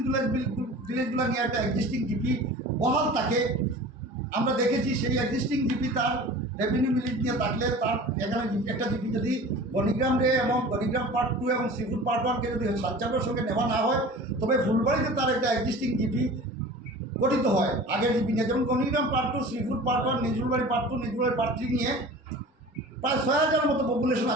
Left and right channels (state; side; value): normal; both; correlation 0.40